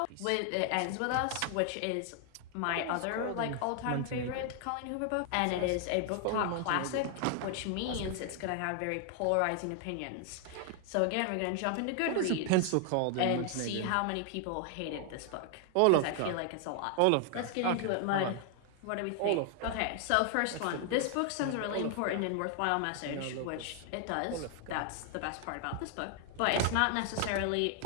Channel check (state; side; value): different; both; correlation 0.00